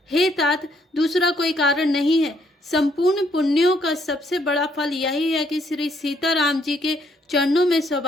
हे तात दूसरा कोई कारण नहीं है। संपूर्ण पुण्यों का सबसे बड़ा फल यही है कि श्री सीताराम जी के चरणों में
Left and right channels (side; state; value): both; normal; correlation 0.70